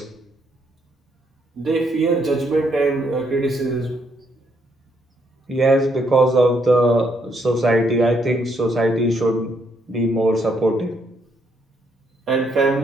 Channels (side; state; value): both; normal; correlation 0.73